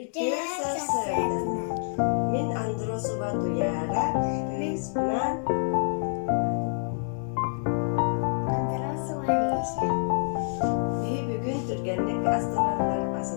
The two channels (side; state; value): right; silent; digital silence